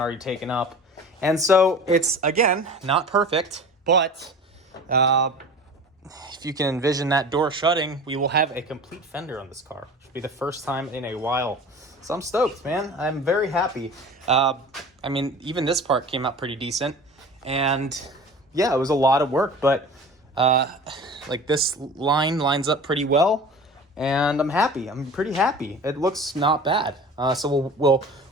already taken up. And so it's, again, not perfect, but if you can envision that door shutting, we will have a complete fender on this car. It'll be the first time in a while. So I'm stoked, man. I'm very happy. Even this part came out pretty decent. And yeah, it was a lot of work, but this line lines up pretty well. And I'm happy. I'm pretty happy. It looks not bad. So we'll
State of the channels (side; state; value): both; normal; correlation 0.38